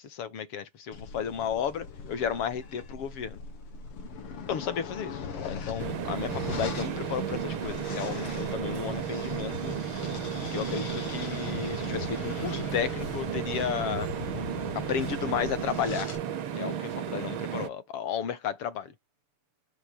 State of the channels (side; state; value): right; late; 6.9 ms